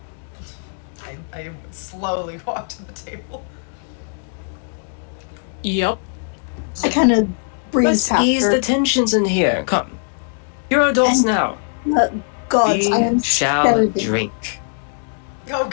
I slowly walk to the table. Yep. I kind of breeze Let's past ease her. the tensions in here. Come. You're adults And- now. Gods, I am We shall better than- drink. Oh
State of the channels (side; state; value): right; silent; 64 dB below the other